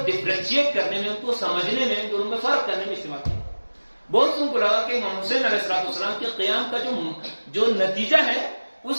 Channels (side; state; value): both; inverted; correlation -1.00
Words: ڈفرینشیٹ کرنے میں, ان کو سمجھنے میں, دونوں میں فرق کرنے میں استعمال کیا. بہت سن کو لگا کہ امام حسین علیہ السلام کے قیام کا جو نتیجہ ہے